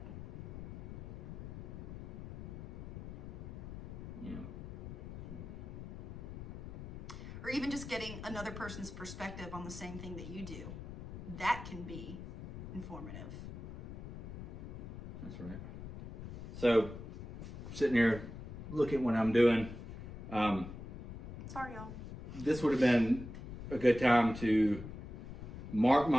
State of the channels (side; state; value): left; noise; rumble, 10 dB below the sound